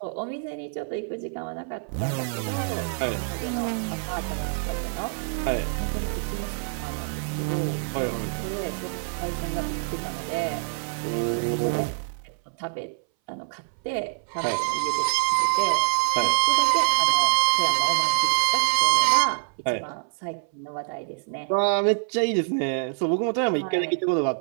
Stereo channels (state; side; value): silent; left; 60 dB below the other